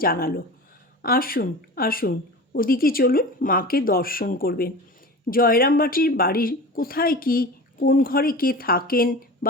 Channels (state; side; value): normal; both; correlation 0.33